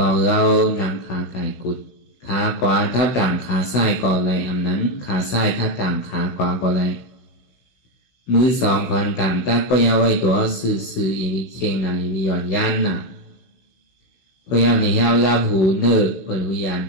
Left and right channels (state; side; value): late; right; 16 ms